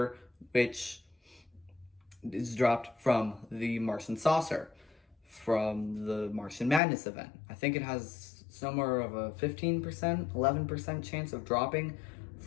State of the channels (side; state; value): right; drops out; at 6.8 s